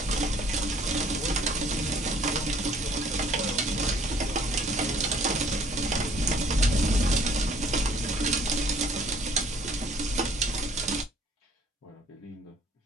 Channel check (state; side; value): normal; both; correlation 0.58